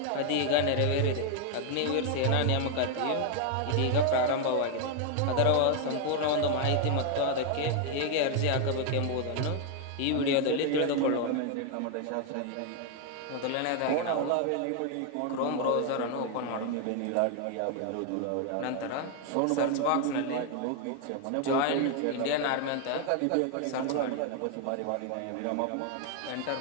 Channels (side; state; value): both; different; correlation 0.00